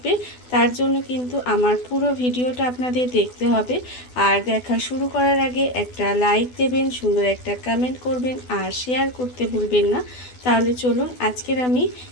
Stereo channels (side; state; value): right; late; 12 ms